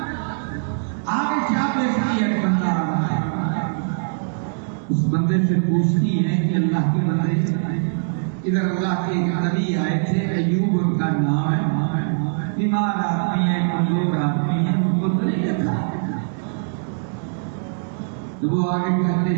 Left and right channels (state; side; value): silent; left; digital silence